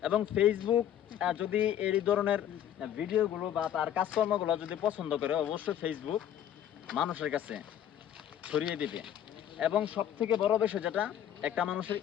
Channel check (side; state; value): right; quieter; 10.4 dB